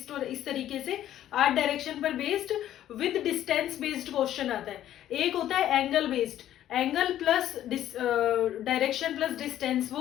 और इस तरीके से 8 डायरेक्शन पर based with distance based question आता है। एक होता है angle based, angle plus direction plus distance,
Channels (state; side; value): quieter; right; 12.1 dB